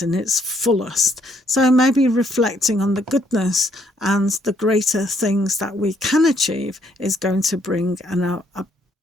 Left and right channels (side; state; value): both; normal; correlation 0.69